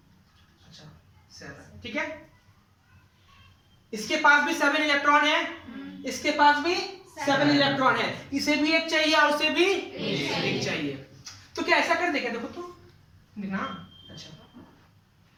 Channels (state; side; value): identical; both; correlation 1.00